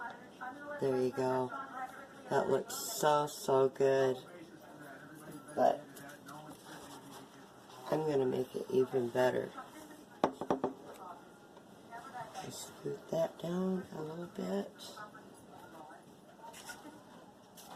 There you go. That looks so good. But I'm going to make it even better. Just scoot that down a little bit.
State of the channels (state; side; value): identical; both; correlation 1.00